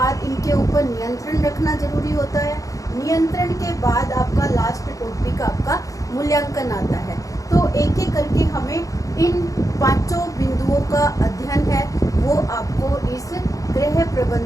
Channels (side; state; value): right; late; 0.16 ms